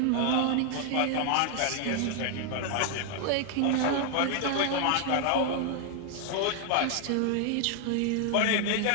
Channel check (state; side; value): different; both; correlation 0.00